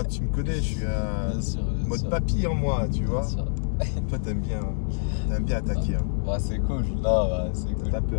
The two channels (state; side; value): silent; right; digital silence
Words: tu me connais, je suis un mode papy en moi, tu vois. Toi t'aimes bien attaquer. Hein. Ouais c'est cool, là ouais, c'est cool. T'as